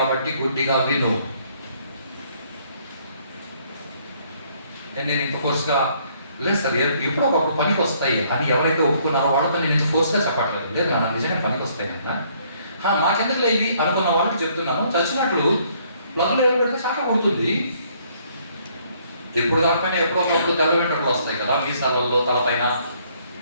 గుడ్డిగా విను. నేను ఇంత ఫోర్స్గా లేదు సార్, ఎప్పుడో ఒకప్పుడు పనికి వస్తాయి అని ఎవరైతే ఒప్పుకున్నారో వాళ్ళతో నేను ఇంత ఫోర్స్గా చెప్పట్లేదు. లేదు నాకు నిజంగా పనికి వస్తాయి అన్న, మాకెందుకు లేవి అనుకున్న వాళ్ళకి చెప్తున్నాను. చచ్చినట్లు ప్లగ్లో ఏం పెడితే చాలా కుడుతుంది. ఎప్పుడు కాకపోయినా ఎప్పుడో ఒకప్పుడు తెల్ల వెంట్రుకలు వస్తాయి కదా మీసాలలో, తలపైన.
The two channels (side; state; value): both; inverted; correlation -0.65